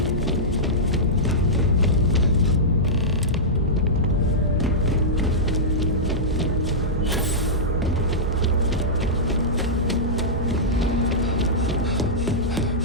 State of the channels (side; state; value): both; normal; correlation -0.13